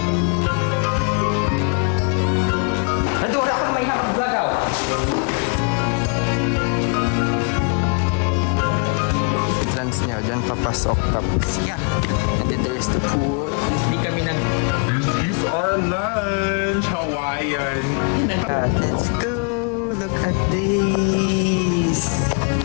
Nadura ka may nakag-vlog ako. Entrance niya, dyan papasok. Tapos, yeah. And then there's the pool. Hindi kami nag... This is our lunch, Hawaiian. Let's go! Look at this!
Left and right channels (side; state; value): right; quieter; 39.8 dB